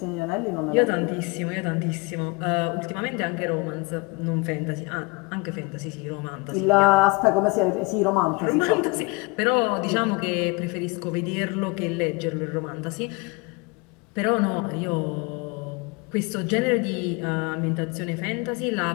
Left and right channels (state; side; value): quieter; right; 26.0 dB